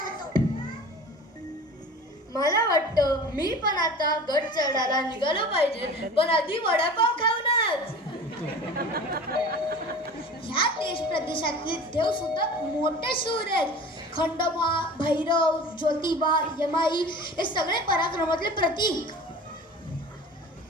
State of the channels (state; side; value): normal; both; correlation 0.39